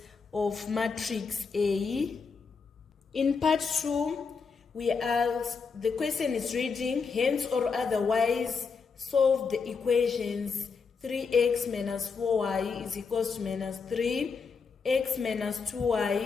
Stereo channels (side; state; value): right; quieter; 5.2 dB